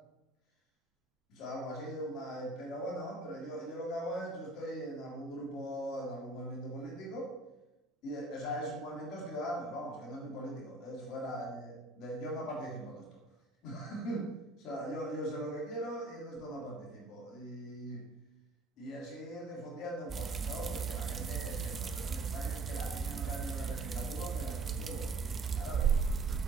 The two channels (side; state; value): left; quieter; 3.1 dB